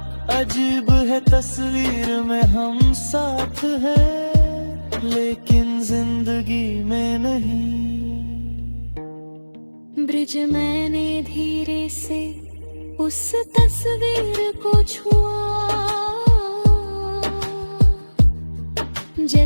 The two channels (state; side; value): inverted; both; correlation -1.00